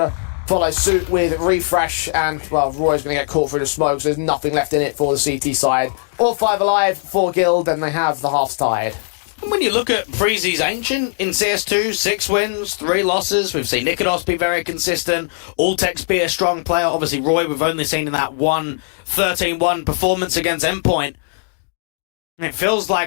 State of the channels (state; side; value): silent; right; digital silence